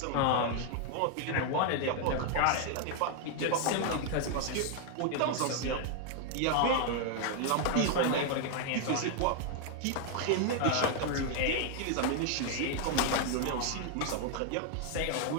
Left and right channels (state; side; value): different; both; correlation 0.00